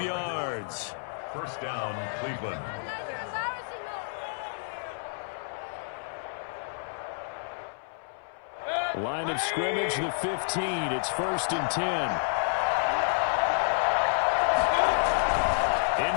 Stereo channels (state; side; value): silent; right; 58 dB below the other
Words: yards. First down, Cleveland. Line of scrimmage, the 15. It's 1st and 10.